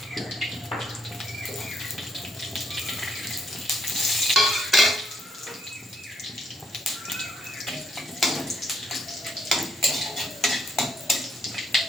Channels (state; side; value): normal; both; correlation 0.73